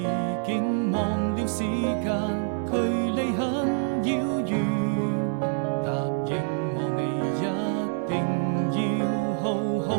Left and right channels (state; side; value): silent; left; digital silence